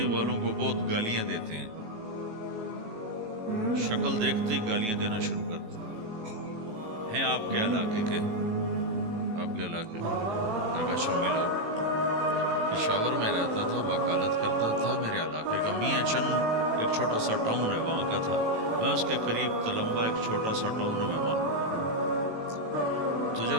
والوں کو بہت گالیاں دیتے ہیں، شکل دیکھتے ہی گالیاں دینا شروع کرتے ہیں آپ کے علاقے کے؟ آپ کے علاقے کے؟ میں نے کہا اچھا ملاؤ۔ پشاور میں رہتا تھا، وکالت کرتا تھا، میرے علاقے کا میاں چند ایک چھوٹا سا ٹاؤن ہے وہاں کا تھا، میں اس کے قریب تلمبا ایک چھوٹا سا ٹاؤن ہے میں وہاں۔ تو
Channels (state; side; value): late; left; 18 ms